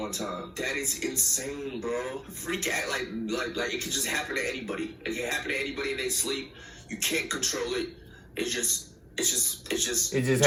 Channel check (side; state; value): both; identical; correlation 1.00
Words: time. That is insane, bro. Freak act like it could just happen to anybody. It can happen to anybody in their sleep. You can't control it. It just happens.